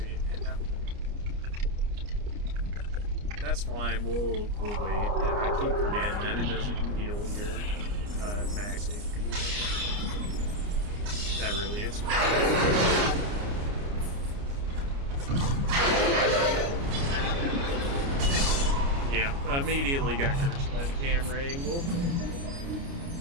That's fine. We'll wait. Yeah, I keep forgetting that it doesn't heal your max HP. That it's fine. Yeah, immediately got cursed by the camera angle.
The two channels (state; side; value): late; left; 29 ms